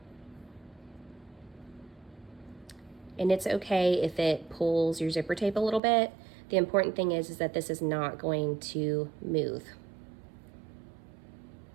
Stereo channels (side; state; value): left; drops out; at 5.8 s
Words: And it's okay if it pulls your zipper tape a little bit. The important thing is that this is not going to move.